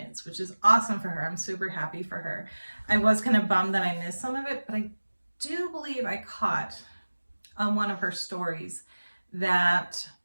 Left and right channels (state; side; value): inverted; both; correlation -1.00